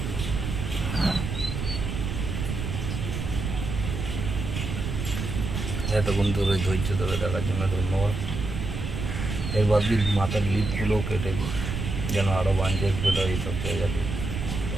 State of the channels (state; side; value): noise; right; rumble, 4 dB below the sound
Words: এতক্ষণ ধরে ধৈর্য ধরে দেখার জন্য ধন্যবাদ। এবার দিন মাথার লিপগুলোও কেটে দিই যেন আরও বাঞ্চেস বেরো এইসব জায়গাতে,